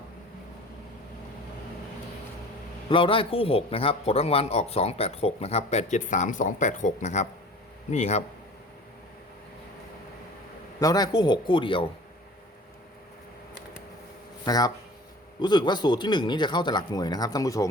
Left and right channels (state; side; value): normal; both; correlation 0.42